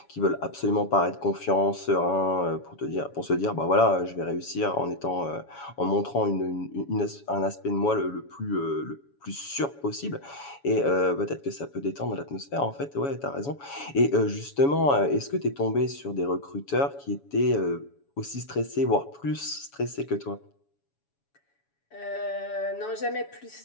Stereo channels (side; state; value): right; late; 7.1 ms